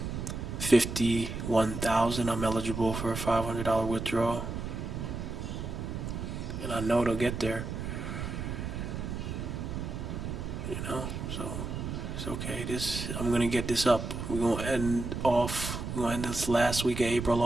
51,000, I'm eligible for a $500 withdrawal. And I know it'll get there. You know, so it's okay. I'm gonna get this up. We're gonna end this last week of April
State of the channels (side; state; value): right; noise; rumble, 5 dB below the sound